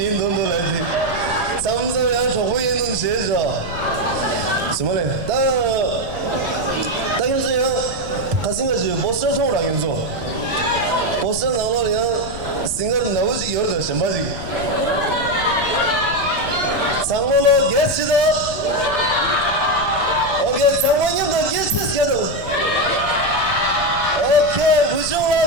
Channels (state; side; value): noise; left; rumble, 11 dB below the sound